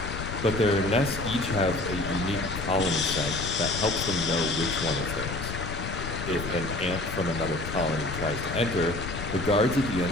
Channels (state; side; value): noise; left; rumble, 6 dB below the sound